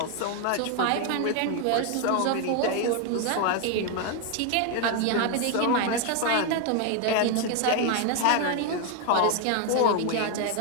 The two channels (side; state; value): both; different; correlation 0.01